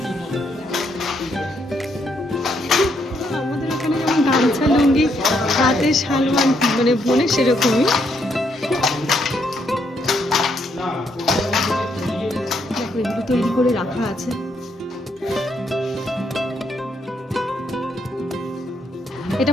আমাদের ওখানে যেমন গামছা লুঙ্গি হাতে শাল মানে বোনে, সেরকমই। দেখো এগুলো তৈরি করে রাখা আছে। এটা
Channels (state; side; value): normal; both; correlation 0.75